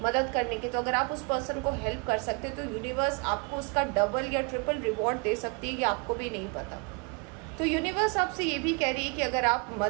मदद करने की, तो अगर आप उस पर्सन को हेल्प कर सकते तो यूनिवर्स आपको उसका डबल या ट्रिपल रिवॉर्ड दे सकती है, ये आपको भी नहीं पता। तो यूनिवर्स आपसे ये भी कह रही है कि अगर आप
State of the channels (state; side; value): quieter; left; 33.3 dB